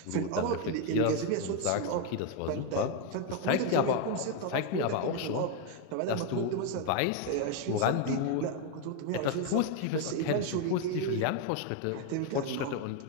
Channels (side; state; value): both; different; correlation 0.01